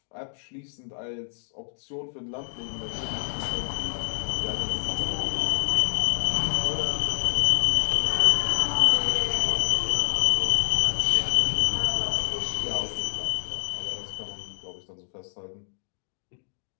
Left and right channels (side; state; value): right; silent; digital silence